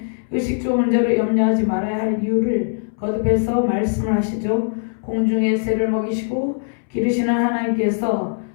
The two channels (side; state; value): right; silent; 65 dB below the other